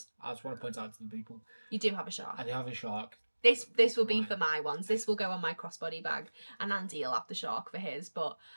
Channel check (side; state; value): both; inverted; correlation -1.00